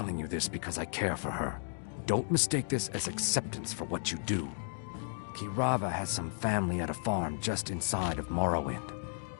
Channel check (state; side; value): silent; right; digital silence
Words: you this because I care for her. Don't mistake this as acceptance for what you do. Kirava has some family at a farm just inside of Morrowind.